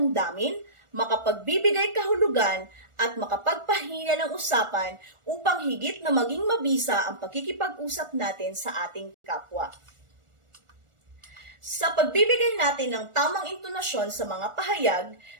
makapagbibigay kahulugan at makapagpahina ng usapan upang higit na maging mabisa ang pakikipag-usap natin sa ating kapwa. Sa pagbibigay natin ng tamang intonasyon sa mga pahayag,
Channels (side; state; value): left; late; 1.4 ms